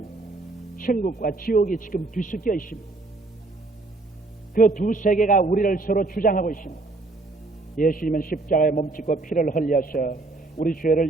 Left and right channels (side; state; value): left; quieter; 3.3 dB